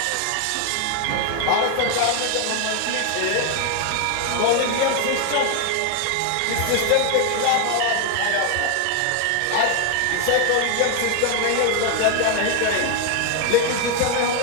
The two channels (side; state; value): both; different; correlation 0.01